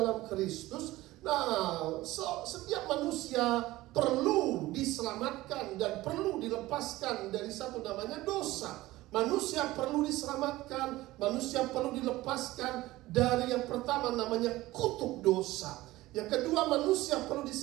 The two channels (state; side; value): quieter; left; 17.8 dB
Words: Kristus. Nah, setiap manusia perlu diselamatkan dan perlu dilepaskan dari satu namanya dosa. Manusia perlu diselamatkan, manusia perlu dilepaskan dari yang pertama namanya kutuk dosa. Yang kedua, manusia perlu